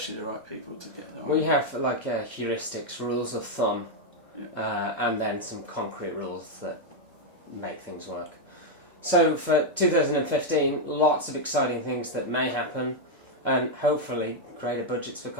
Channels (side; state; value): both; normal; correlation 0.01